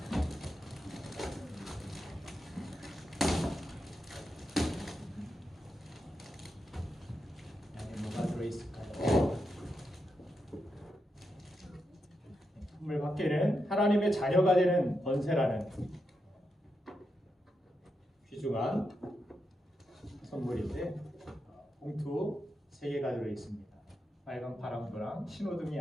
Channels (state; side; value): normal; both; correlation 0.85